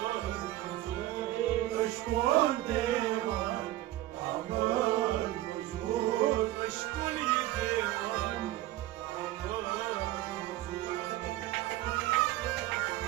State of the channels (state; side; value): quieter; left; 15.5 dB